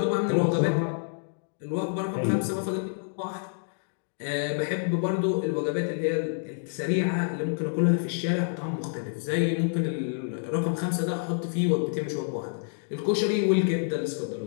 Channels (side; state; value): right; silent; digital silence